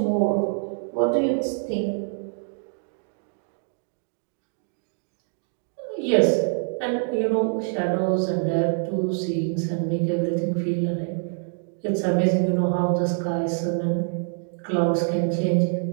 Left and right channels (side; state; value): left; silent; 62 dB below the other